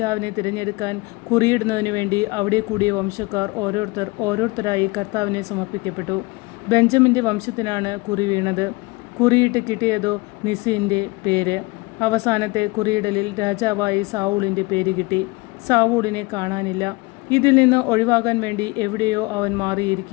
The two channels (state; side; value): quieter; right; 24.2 dB